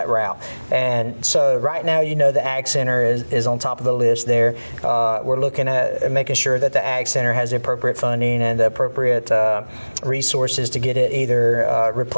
route. And so right now, you know, the Ag Center is on top of the list there. We're looking at making sure that the Ag Center has the appropriate funding and the appropriate resources to get it either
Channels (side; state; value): both; inverted; correlation -1.00